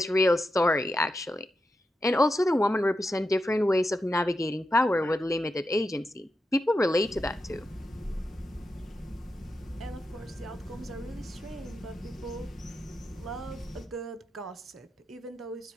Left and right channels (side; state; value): both; normal; correlation 0.87